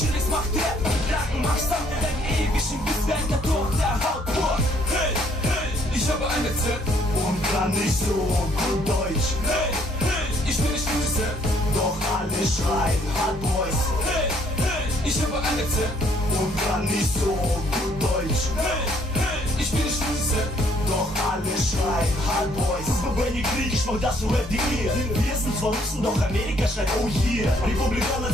macht Rap, Lacken macht Sound, wir werden ewig im Bisswerk der durch der Haut pur. hey, hey, ich habe ein Rezept Und kann nicht so gut Deutsch. Hey, hey, ich bin nicht Rezept, Doch alle schreien Hard Boys. hey, hey, ich habe ein Rezept Und kann nicht so gut Deutsch. Hey, hey, ich bin nicht Rezept, Doch alle schreien Hard Boys. Wenn ihr Krieg, ich mach das für Rap.de. Wir sind zwar Russen, doch Amerika schreit oh yeah. Republikaner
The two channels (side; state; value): both; normal; correlation 0.65